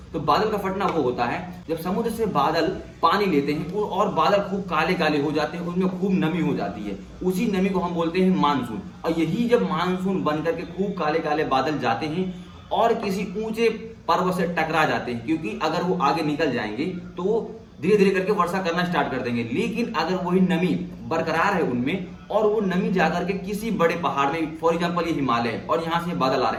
तो बादल का फटना वो होता है जब समुद्र से बादल पानी लेते हैं और बादल खूब काले काले हो जाते हैं, उनमें खूब नमी हो जाती है, उसी नमी को हम बोलते हैं मानसून। और यही जब मानसून बनकर के खूब काले काले बादल जाते हैं और किसी ऊंचे पर्वत से टकरा जाते हैं, क्योंकि अगर वो आगे निकल जाएंगे तो वो धीरे धीरे करके वर्षा करना स्टार्ट कर देंगे। लेकिन अगर वही नमी बरकरार है उनमें और वो नमी जाकर के किसी बड़े पहाड़ में, फॉर एग्जांपल ये हिमालय है और यहाँ से बादल आ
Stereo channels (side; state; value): both; identical; correlation 1.00